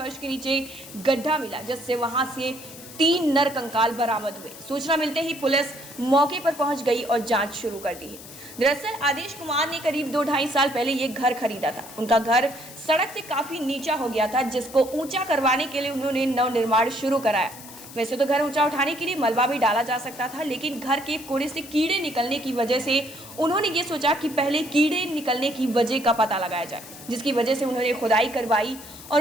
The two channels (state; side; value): noise; left; hiss, 16 dB below the sound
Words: के नीचे गड्ढा मिला, जिससे वहां से 3 नर कंकाल बरामद हुए। सूचना मिलते ही पुलिस मौके पर पहुंच गई और जांच शुरू कर दी है। दरअसल आदेश कुमार ने करीब 2-2.5 साल पहले ये घर खरीदा था। उनका घर सड़क से काफी नीचा हो गया था, जिसको ऊंचा करवाने के लिए उन्होंने नवनिर्माण शुरू कराया। वैसे तो घर ऊंचा उठाने के लिए मलबा भी डाला जा सकता था, लेकिन घर के कोड़े से कीड़े निकलने की वजह से उन्होंने ये सोचा कि पहले कीड़े निकलने की वजह का पता लगाया जाए, जिसकी वजह से उन्होंने खुदाई करवाई।